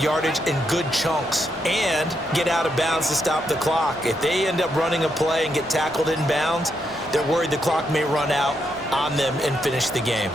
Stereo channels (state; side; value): normal; both; correlation 0.80